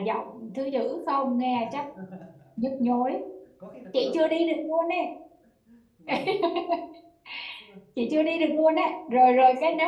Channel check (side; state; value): both; identical; correlation 1.00